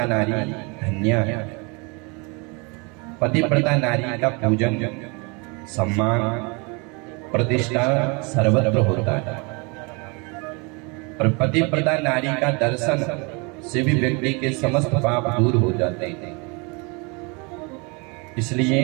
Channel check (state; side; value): quieter; left; 30.5 dB